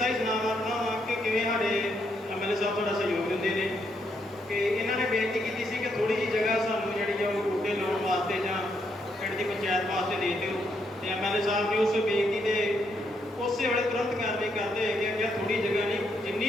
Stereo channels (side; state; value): both; normal; correlation 0.77